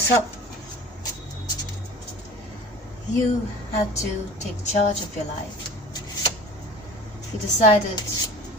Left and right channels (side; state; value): both; normal; correlation 0.39